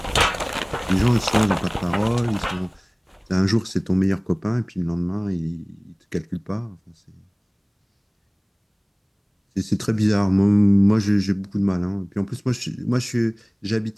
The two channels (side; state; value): both; identical; correlation 1.00